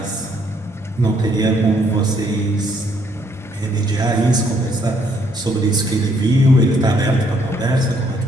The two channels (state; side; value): normal; both; correlation 0.68